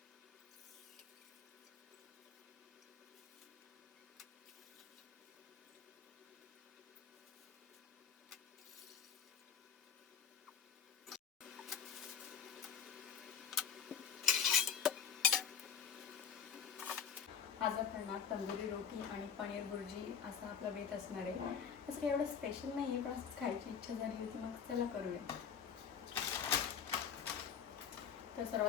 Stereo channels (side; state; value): right; quieter; 7.6 dB